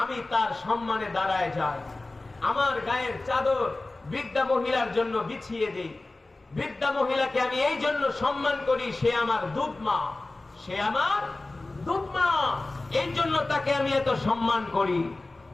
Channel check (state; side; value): quieter; right; 3.1 dB